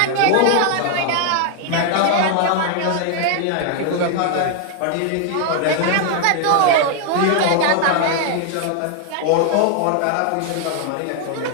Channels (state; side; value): different; both; correlation 0.00